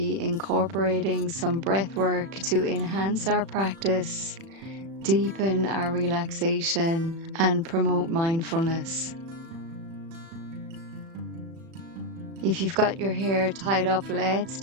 incorporating some breath work to enhance our practice, deepen our relaxation, and promote mindfulness. If you've got your hair tied up, let's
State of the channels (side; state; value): left; late; 36 ms